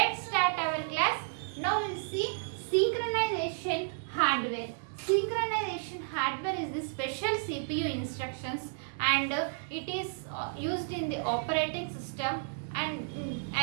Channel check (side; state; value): left; silent; digital silence